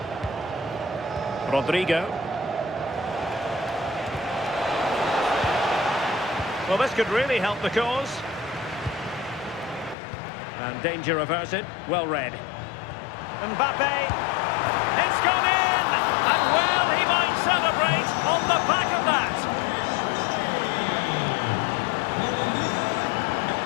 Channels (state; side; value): drops out; right; at 10.0 s